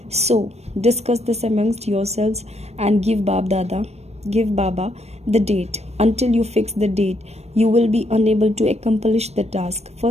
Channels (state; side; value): late; left; 0.31 ms